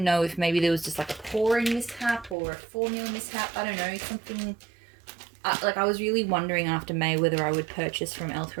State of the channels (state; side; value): drops out; left; at 2.4 s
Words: know if maybe there was just like a pouring mishap or a formula mishap. I don't know, something. I was really wondering after May whether I would purchase from